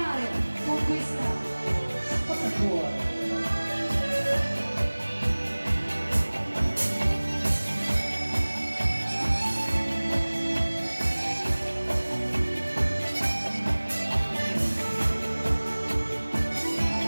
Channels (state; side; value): inverted; both; correlation -1.00